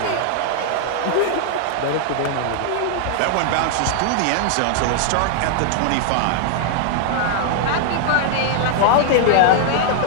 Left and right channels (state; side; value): different; both; correlation -0.01